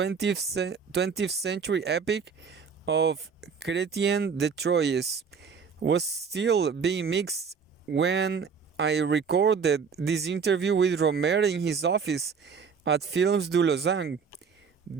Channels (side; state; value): left; quieter; 6.0 dB